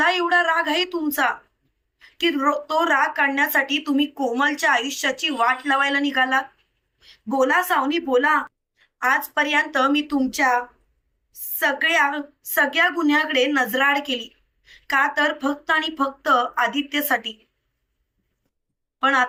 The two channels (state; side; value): identical; both; correlation 1.00